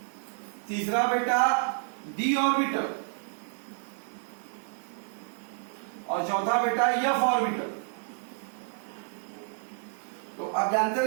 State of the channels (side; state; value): left; silent; 58 dB below the other